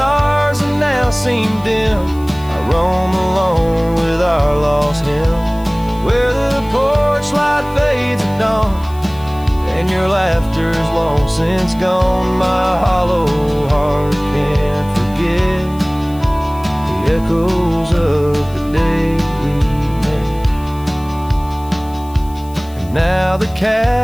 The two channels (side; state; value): left; noise; hiss, 23 dB below the sound